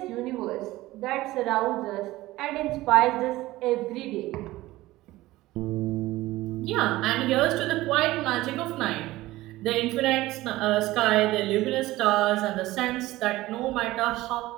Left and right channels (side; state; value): left; quieter; 17.7 dB